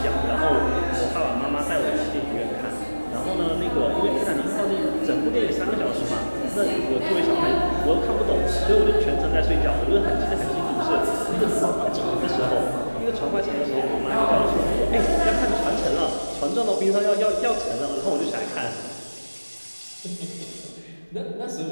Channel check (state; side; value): inverted; both; correlation -1.00